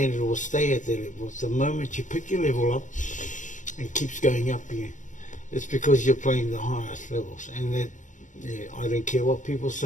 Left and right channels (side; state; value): right; late; 0.37 ms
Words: will stay at that level. The moment you pick your level up and keeps going up, it's because you're playing the highest levels. And that, I don't care what people